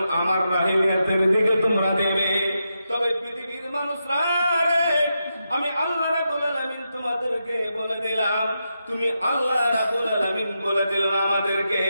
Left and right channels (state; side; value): inverted; both; correlation -0.86